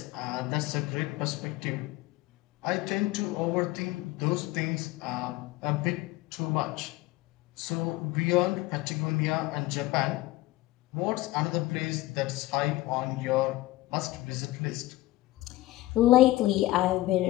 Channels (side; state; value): right; quieter; 17.6 dB